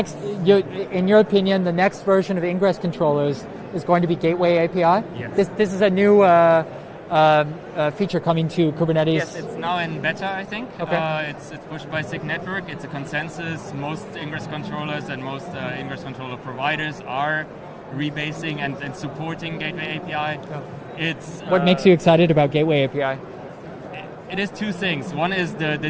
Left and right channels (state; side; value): identical; both; correlation 1.00